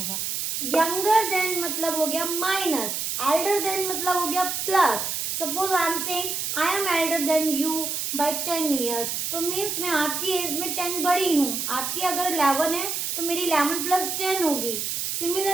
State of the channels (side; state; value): right; noise; hiss, 2 dB below the sound